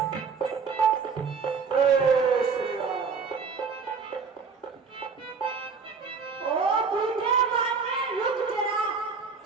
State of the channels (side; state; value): left; quieter; 5.4 dB